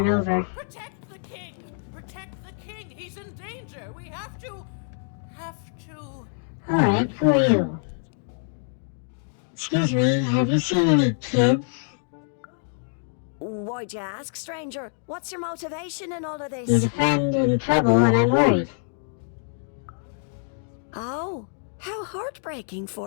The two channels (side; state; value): right; silent; digital silence